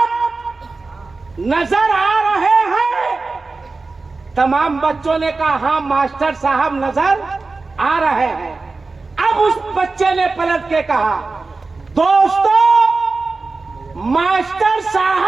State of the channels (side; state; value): left; quieter; 3.8 dB